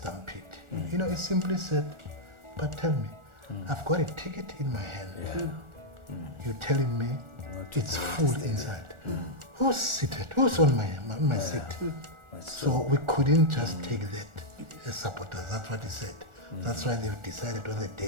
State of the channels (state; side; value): late; left; 1.4 ms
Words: He simply said, but tell me, I've got a ticket in my hand. You're telling me it's full inside. Who's seated? Who's on my seat? So we couldn't just take that as supporters. That's what he said. That's why they've decided on the